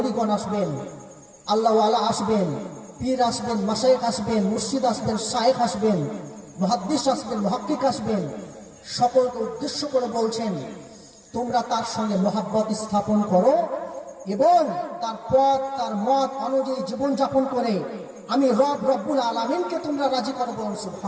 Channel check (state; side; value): identical; both; correlation 1.00